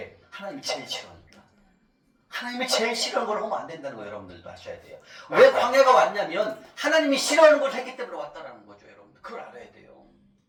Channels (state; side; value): identical; both; correlation 1.00